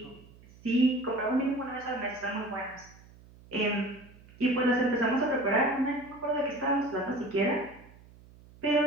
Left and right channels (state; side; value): noise; right; hum, 23 dB below the sound